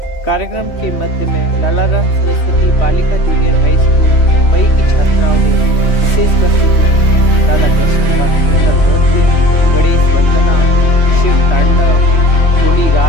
कार्यक्रम के मध्य में लालाराम सरस्वती बालिका जूनियर हाई स्कूल मई की छात्राओं ने विशेष प्रस्तुति दी। राधा कृष्ण का सुंदर नृत्य, गणेश वंदना, शिव तांडव, होली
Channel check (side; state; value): right; late; 3.2 ms